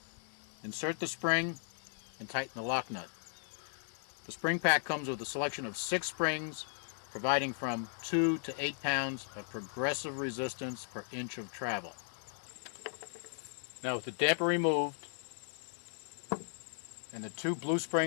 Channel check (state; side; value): silent; right; digital silence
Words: insert the spring, and tighten the lock nut. The spring pack comes with a selection of 6 springs, providing from 2 to 8 pounds of progressive resistance per inch of travel. Now with the damper removed and the 2 blue